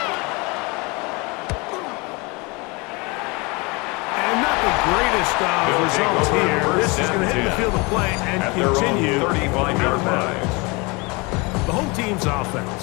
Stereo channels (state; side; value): quieter; right; 27.4 dB